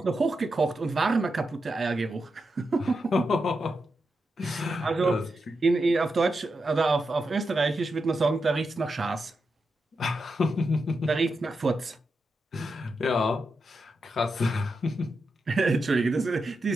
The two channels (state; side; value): normal; both; correlation 0.87